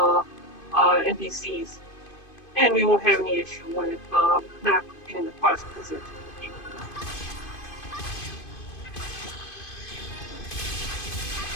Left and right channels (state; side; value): late; right; 2.5 ms